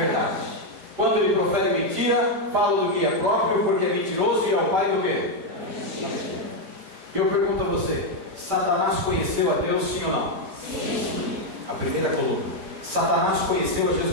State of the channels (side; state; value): left; late; 5.1 ms